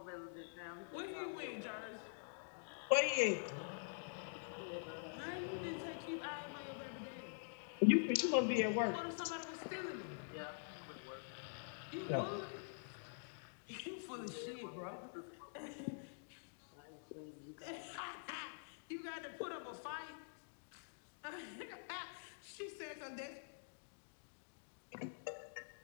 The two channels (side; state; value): right; silent; digital silence